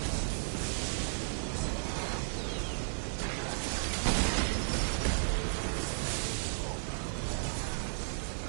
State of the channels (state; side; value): silent; left; 55 dB below the other